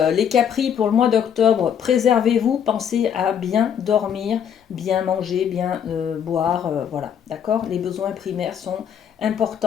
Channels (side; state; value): right; quieter; 8.4 dB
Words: capris pour le mois d'octobre, préservez-vous, pensez à bien dormir, bien manger, bien boire, voilà, d'accord? Les besoins primaires sont